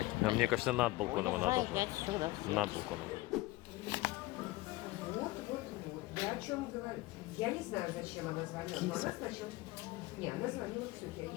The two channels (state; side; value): quieter; right; 19.7 dB